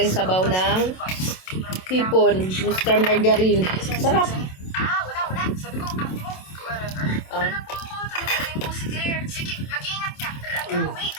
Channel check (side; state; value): right; late; 27 ms